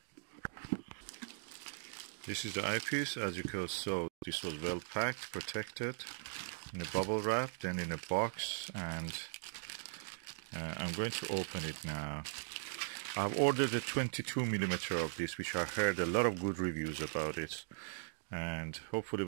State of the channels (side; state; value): left; silent; digital silence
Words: This is the eyepiece. As you can see, this was well packed, protected in a bubble wrap, then in a box, and I'm going to open it now. I've ordered a 22mm of this, which I heard a lot of good reviews about it, and hopefully